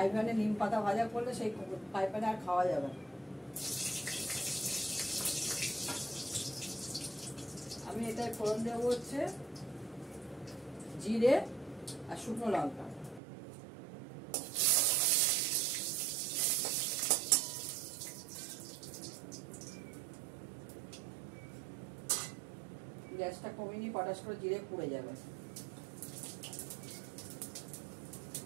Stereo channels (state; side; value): drops out; left; at 13.2 s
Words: প্যানে নিম পাতা ভাজা করলে সেই ফ্রাই প্যানে আর খাওয়া যাবে না। আমি এটায় ফোড়ন দেবো হচ্ছে জিরে আর শুকনো লঙ্কা। গ্যাসটা কমিয়ে নিয়ে পটাশ করে জিরে পুড়ে যাবে।